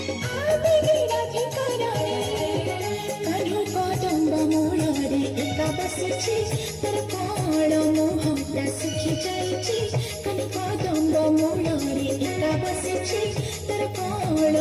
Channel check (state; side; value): identical; both; correlation 1.00